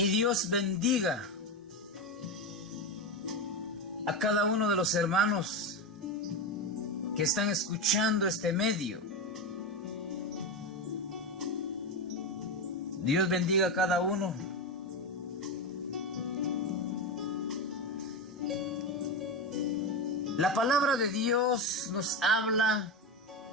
Dios bendiga a cada uno de los hermanos que están escuchando este medio. Dios bendiga a cada uno. La palabra de Dios nos habla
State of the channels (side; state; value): both; normal; correlation 0.15